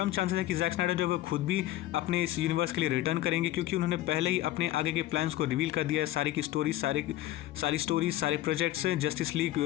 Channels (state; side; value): quieter; right; 15.2 dB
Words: चांसेस है कि जैक स्नाइडर जो है वो खुद भी अपने इस यूनिवर्स के लिए रिटर्न करेंगे, क्योंकि उन्होंने पहले ही अपने आगे के प्लान्स को रिवील कर दिया है। सारी की स्टोरी, सारी स्टोरीज, सारे प्रोजेक्ट्स, जस्टिस लीग